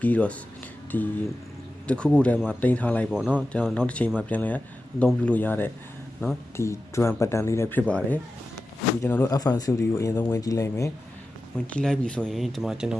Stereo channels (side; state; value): both; normal; correlation 0.93